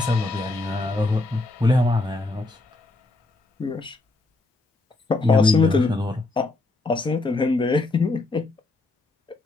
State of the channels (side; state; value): right; quieter; 3.1 dB